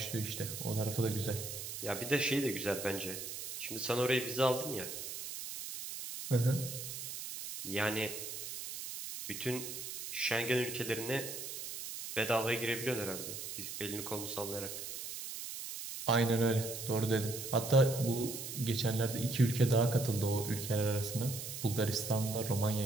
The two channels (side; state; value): right; noise; hiss, 7 dB below the sound